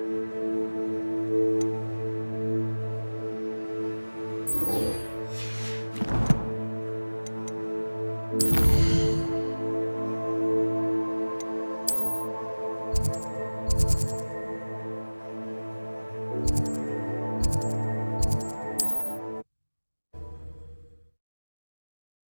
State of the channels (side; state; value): both; inverted; correlation -1.00